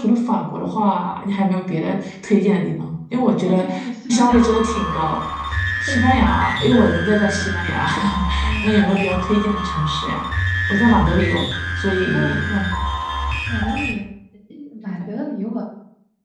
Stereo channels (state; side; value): identical; both; correlation 1.00